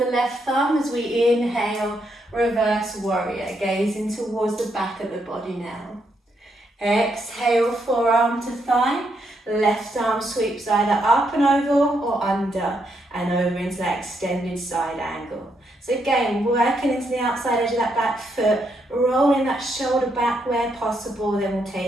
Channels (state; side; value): normal; both; correlation 0.78